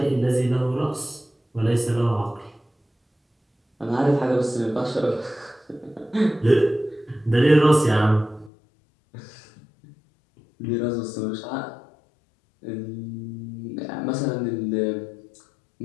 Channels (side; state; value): right; drops out; at 8.5 s